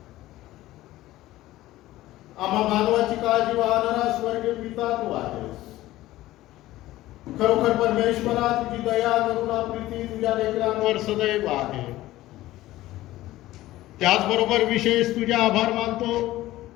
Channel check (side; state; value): right; quieter; 16.1 dB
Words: आम्हा मानवाची काळजी वाहणारा स्वर्गीय पिता तू आहेस. खरोखर परमेश्वरा, तुझी दया करुणा प्रीती तुझ्या लेकरांवर सदैव आहे. त्याचबरोबर विशेष तुझे आभार मानतो